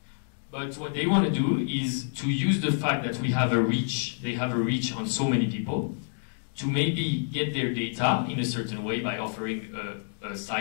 But what they want to do is to use the fact that we have a reach, they have a reach on so many people, to maybe get their data in a certain way by offering a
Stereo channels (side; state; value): right; silent; digital silence